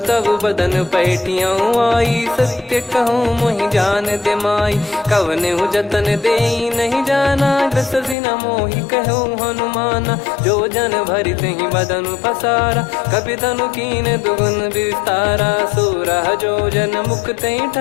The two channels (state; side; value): drops out; right; at 8.2 s